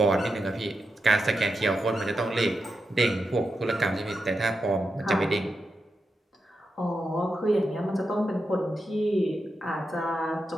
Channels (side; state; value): both; normal; correlation 0.87